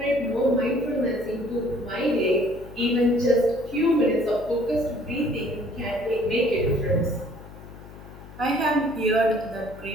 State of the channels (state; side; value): noise; left; hum, 17 dB below the sound